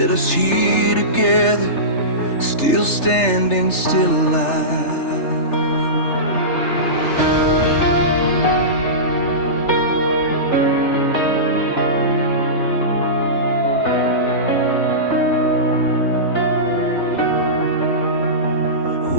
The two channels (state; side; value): late; right; 3.3 ms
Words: us here together, still standing, still alive.